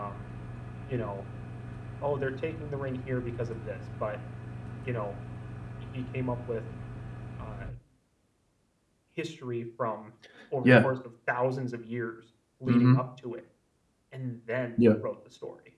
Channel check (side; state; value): both; identical; correlation 1.00